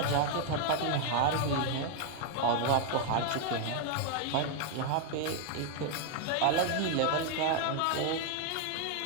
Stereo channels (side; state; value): both; different; correlation 0.01